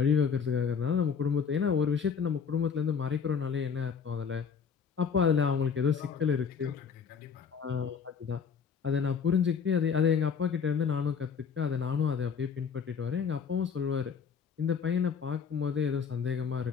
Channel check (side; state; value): right; quieter; 6.4 dB